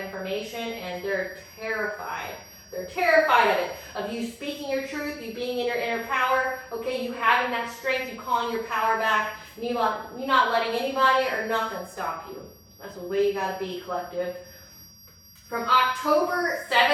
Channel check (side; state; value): both; identical; correlation 1.00